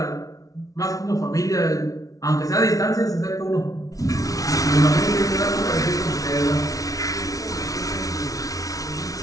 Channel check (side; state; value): right; late; 0.17 ms